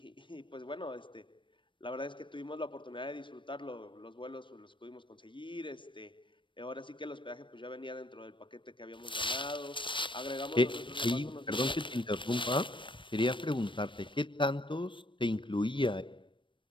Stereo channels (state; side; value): late; right; 0.24 ms